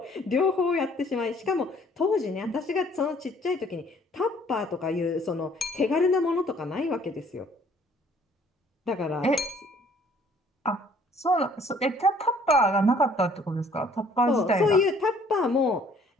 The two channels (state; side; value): normal; both; correlation 0.59